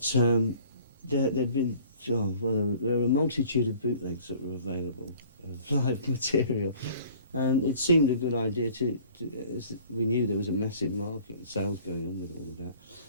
there'd been, there were a multitude of bootlegs that were available of live material. And it seemed a good idea as we knew there was a massive market and sales going on with all of that.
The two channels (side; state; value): both; inverted; correlation -0.51